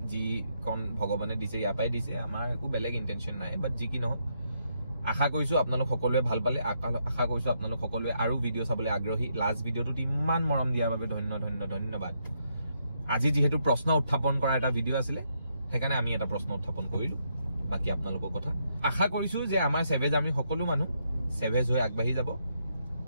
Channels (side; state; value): both; inverted; correlation -0.77